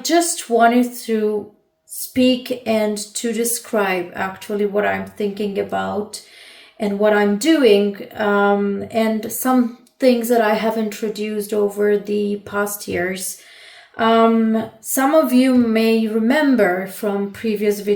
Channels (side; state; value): both; identical; correlation 1.00